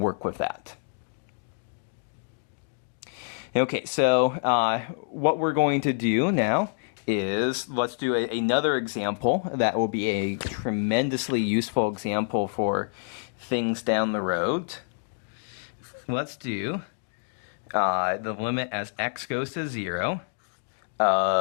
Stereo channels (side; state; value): right; silent; digital silence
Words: with that. Okay, so what we're going to do now is let's do another example that will be a tremendously useful example for things down the road. Let's do the limit as x goes to 0